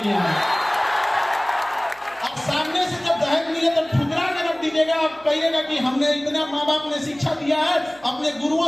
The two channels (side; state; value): right; noise; hum, 28 dB below the sound